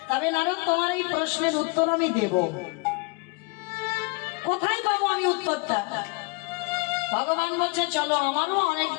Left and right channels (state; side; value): quieter; right; 29.4 dB